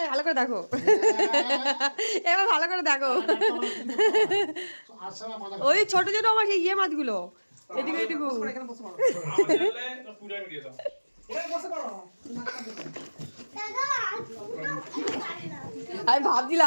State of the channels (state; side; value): inverted; both; correlation -1.00